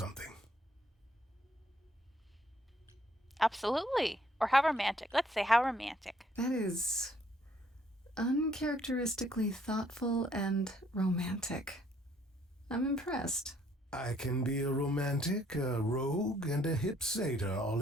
Absolutely. Or how romantic? Let's say how romantic. That is uncharacteristically thoughtful and romantic. I'm impressed. I can be a romantic, a rogue, and a hip satyr all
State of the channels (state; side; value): normal; both; correlation 0.66